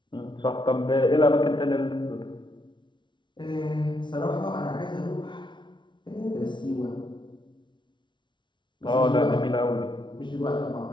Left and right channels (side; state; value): right; late; 0.23 ms